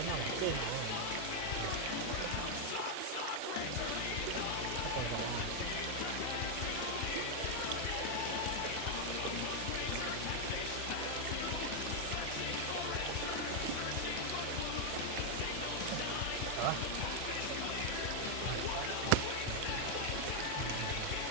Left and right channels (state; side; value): different; both; correlation 0.00